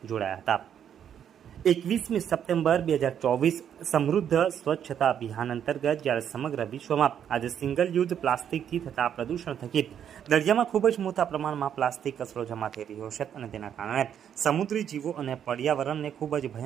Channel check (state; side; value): quieter; left; 9.0 dB